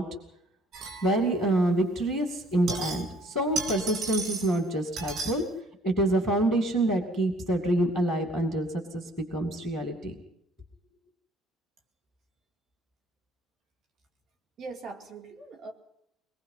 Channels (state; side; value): normal; both; correlation 0.58